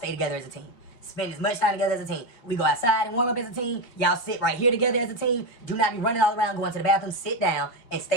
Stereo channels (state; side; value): late; right; 4.5 ms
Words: together as a team. Spend as much time together as a team. We go outside and warm up as a team. Y'all sit right here together as a team. Do not be running all around, going to the bathroom. Sit down and